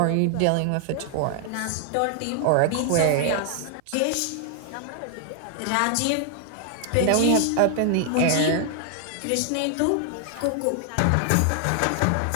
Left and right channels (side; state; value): both; different; correlation 0.00